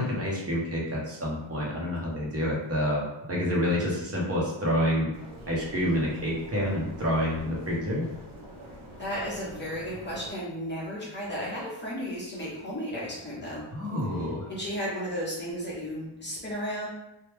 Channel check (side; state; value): both; normal; correlation 0.29